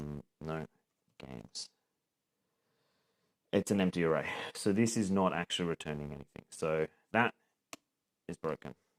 no games. It's an empty array. So this is not actually returning anything. So that is broken.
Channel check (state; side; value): identical; both; correlation 1.00